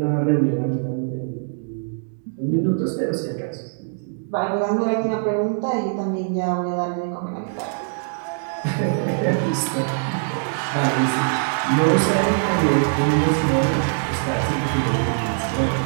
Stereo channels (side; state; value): left; silent; digital silence